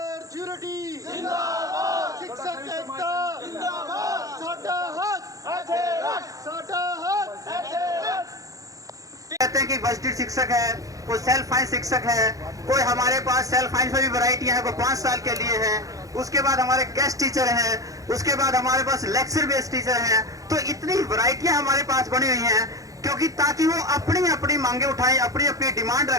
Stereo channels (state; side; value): late; left; 0.17 ms